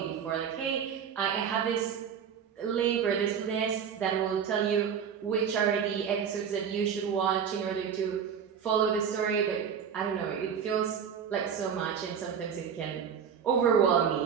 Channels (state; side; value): quieter; left; 7.5 dB